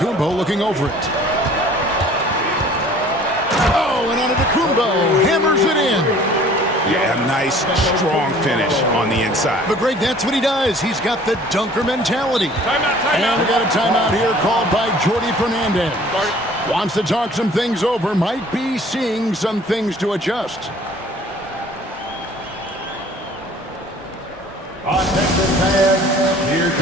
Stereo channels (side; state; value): both; normal; correlation 0.51